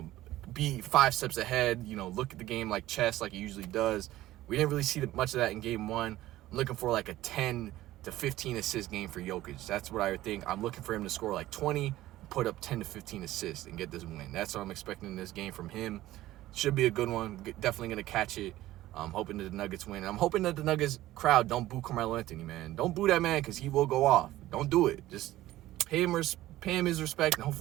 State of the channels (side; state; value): left; quieter; 15.5 dB